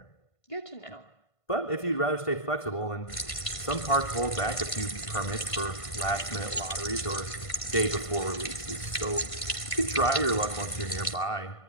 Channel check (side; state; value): right; late; 1.5 ms